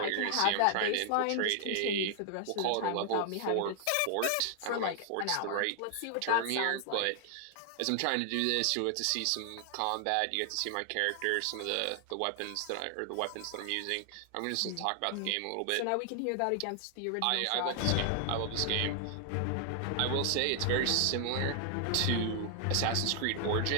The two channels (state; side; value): different; both; correlation 0.00